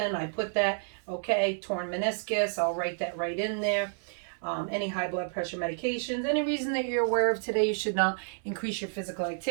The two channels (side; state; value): left; silent; digital silence